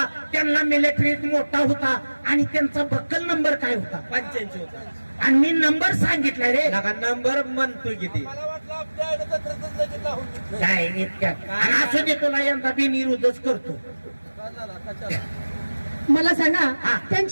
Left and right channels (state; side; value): inverted; both; correlation -1.00